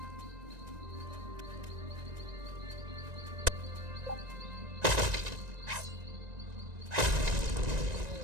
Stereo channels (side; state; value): left; late; 1.9 ms